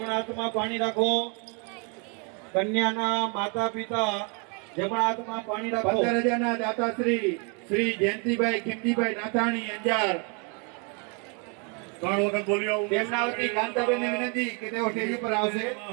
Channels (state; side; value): quieter; left; 34.8 dB